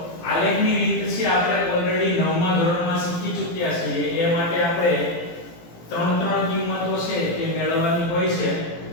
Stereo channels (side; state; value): right; late; 18 ms